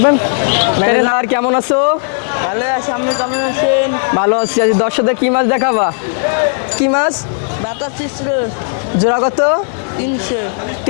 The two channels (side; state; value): right; silent; 67 dB below the other